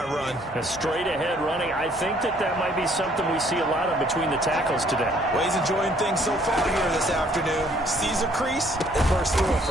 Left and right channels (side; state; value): both; normal; correlation 0.62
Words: run. A straight ahead running. I I think that might be something we see a lot of between the tackles today. Well, he's enjoying things so far here this afternoon. Sees a crease and bursts through it